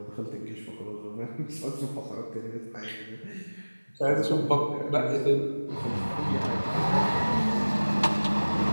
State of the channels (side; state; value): both; inverted; correlation -1.00